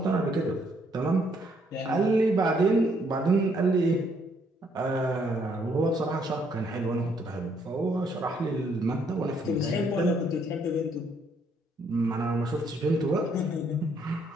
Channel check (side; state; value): both; normal; correlation 0.69